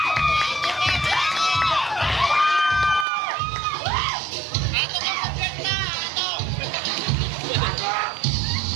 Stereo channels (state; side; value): drops out; left; at 3.1 s